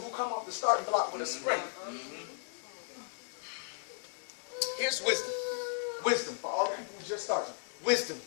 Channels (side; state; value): right; silent; digital silence